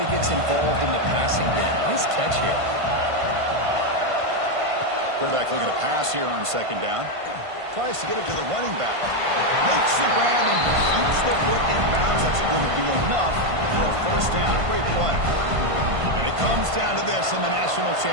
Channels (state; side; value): late; left; 1.5 ms